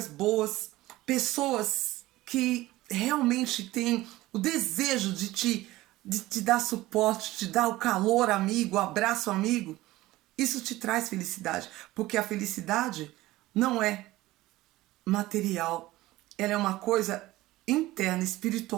boas, pessoas que realmente têm o desejo de te dar suporte, te dar o calor amigo, o abraço amigo, isso te traz felicidade. Porque a felicidade não é material, ela é uma coisa interna,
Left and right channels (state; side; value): quieter; left; 17.6 dB